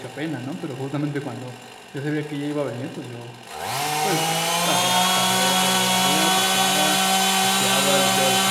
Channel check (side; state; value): both; identical; correlation 1.00